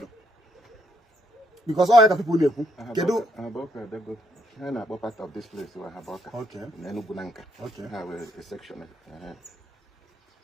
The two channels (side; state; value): both; normal; correlation 0.73